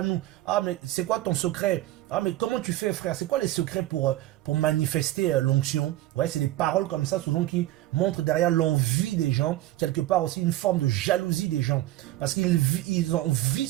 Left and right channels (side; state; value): left; quieter; 15.6 dB